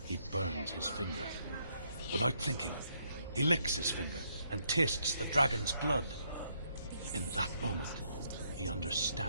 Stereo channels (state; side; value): inverted; both; correlation -0.73